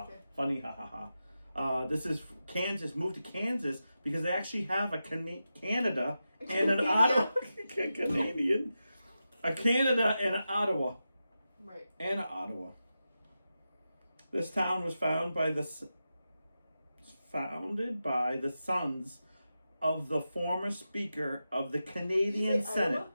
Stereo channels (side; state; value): both; inverted; correlation -0.91